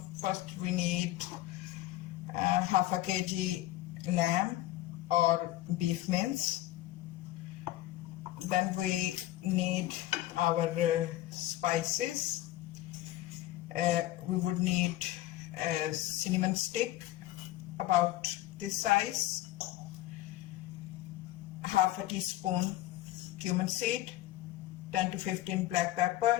we need half a kg lamb or beef mince. Then we need our spices. We would need a cinnamon stick about this size, half a teaspoon cumin seed, 10 to 15 black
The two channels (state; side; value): quieter; right; 15.7 dB